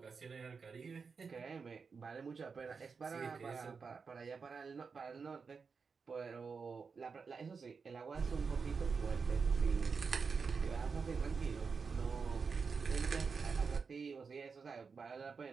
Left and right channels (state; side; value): quieter; left; 5.3 dB